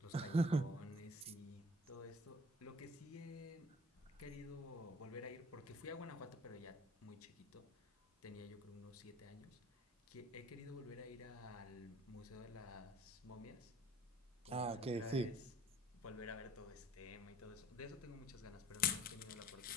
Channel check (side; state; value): both; normal; correlation 0.51